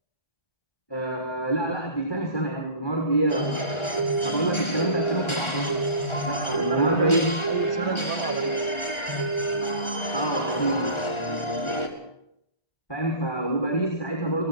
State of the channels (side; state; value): right; late; 1.4 ms